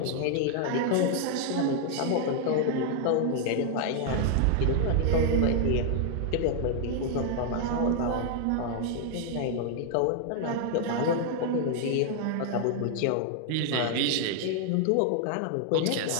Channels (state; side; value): different; both; correlation 0.00